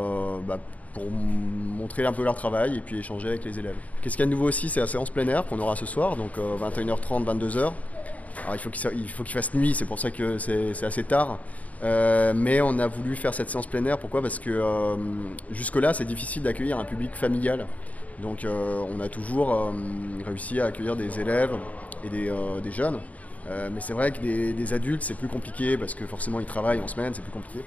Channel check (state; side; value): late; right; 0.071 ms